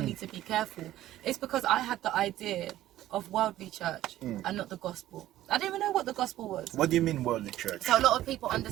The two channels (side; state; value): left; quieter; 14.1 dB